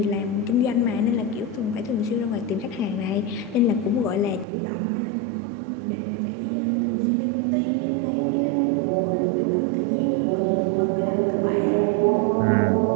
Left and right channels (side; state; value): left; drops out; at 4.5 s